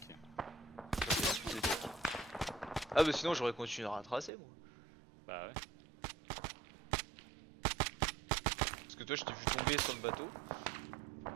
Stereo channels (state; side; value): drops out; left; at 4.3 s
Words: Ah bah sinon j'aurais continué à retracer moi. Bah ouais. Parce que toi je t'ai vu tomber sur le bateau.